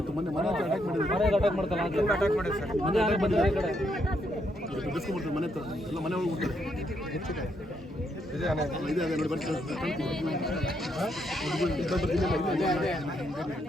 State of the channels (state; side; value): normal; both; correlation 0.76